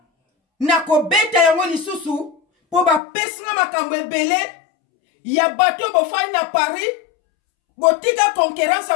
na kobeta yango lisusu po ba pesinga makambo ebele ya bato bofani na Paris botika concurrence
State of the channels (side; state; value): right; drops out; at 3.0 s